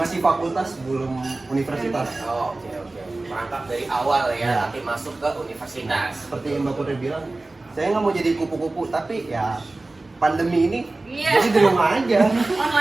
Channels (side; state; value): left; quieter; 3.1 dB